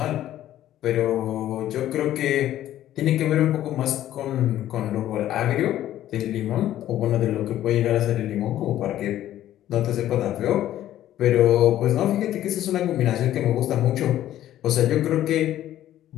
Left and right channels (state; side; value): quieter; right; 12.8 dB